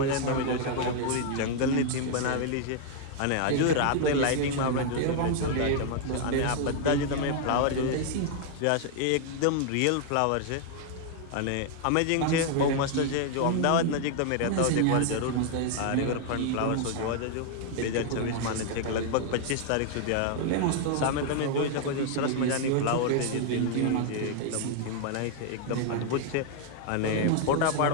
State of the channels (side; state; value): both; different; correlation 0.00